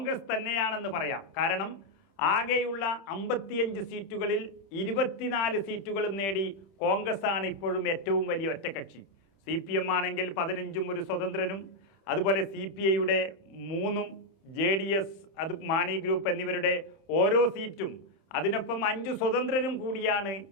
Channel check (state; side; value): late; right; 31 ms